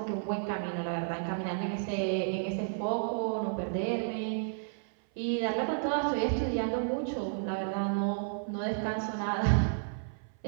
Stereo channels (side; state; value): left; silent; 56 dB below the other